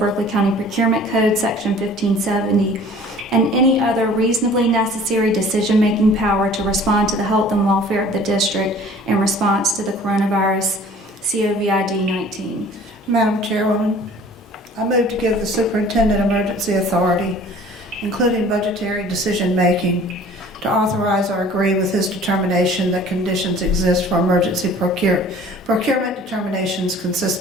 County Procurement Code, Section 1570, and any other reasonably necessary decision-making power to respond to the health and welfare of the district in response to the coronavirus COVID-19. Madam Chairwoman, I move to give the superintendent emergency authority, including budgetary decision-making, to authorize or agree with his determination that conditions exist for emergency procurement determinations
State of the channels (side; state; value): both; normal; correlation 0.49